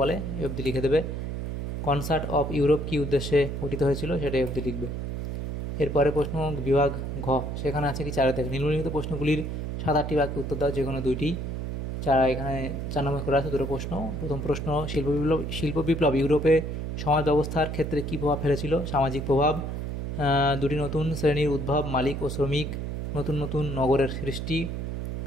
অবধি লিখে দেবে। কনসার্ট অফ ইউরোপ কী উদ্দেশ্যে গঠিত হয়েছিল, সেটাই অবধি লিখবে। এরপরে প্রশ্ন বিভাগ ঘ, সেখানে আছে কি 4 থেকে নিম্নলিখিত প্রশ্নগুলির 7-8টি বাক্যে উত্তর দাও, যে কোনো 2টি। যারা এখানে 4 নম্বর করে আছে দুটো প্রশ্ন। প্রথম প্রশ্ন, শিল্প বিপ্লব ইউরোপে সমাজ ব্যবস্থার ক্ষেত্রে কী প্রভাব ফেলেছিল? সামাজিক প্রভাব, দুটি নতুন শ্রেণীর উদ্ভব, মালিক ও শ্রমিক, নতুন নতুন নগরের সৃষ্টি,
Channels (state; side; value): noise; right; hum, 4 dB below the sound